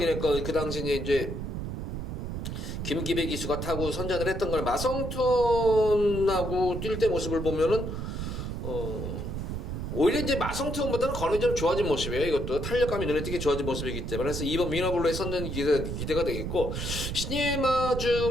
거, 그 당시에 이제 김기배 기수가 타고 선전을 했던 걸 마성톤하고 뛸 때 모습을 보면은, 오히려 이제 마성톤보다는 거는 좀 좋아진 모습이에요. 이것도 탄력감이 눈에 띄게 좋아진 모습이기 때문에. 그래서 이번 위너블루의 선전이 기대가 되겠고, 신예마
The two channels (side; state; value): right; noise; rumble, 4 dB below the sound